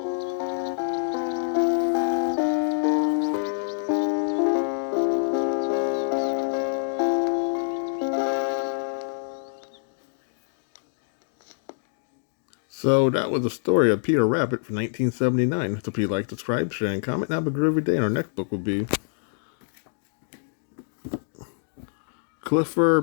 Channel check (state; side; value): silent; right; digital silence